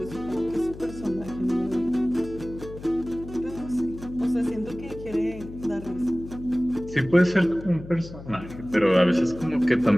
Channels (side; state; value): left; noise; hum, 14 dB below the sound